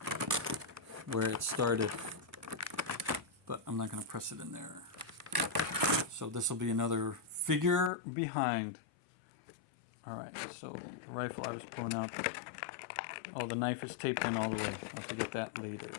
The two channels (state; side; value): drops out; right; at 7.9 s